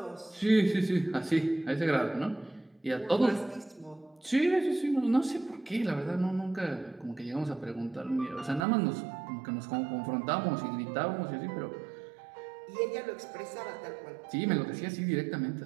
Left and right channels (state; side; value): drops out; left; at 8.7 s